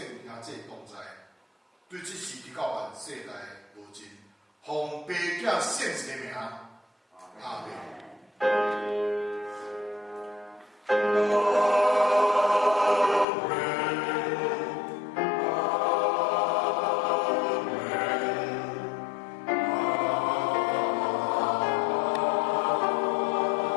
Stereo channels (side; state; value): right; drops out; at 13.2 s